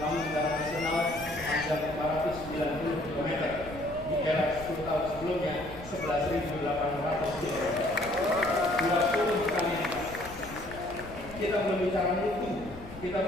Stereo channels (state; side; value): noise; left; rumble, 15 dB below the sound